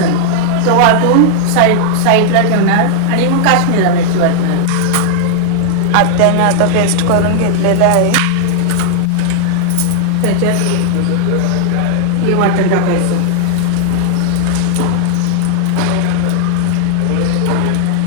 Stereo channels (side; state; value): both; different; correlation 0.00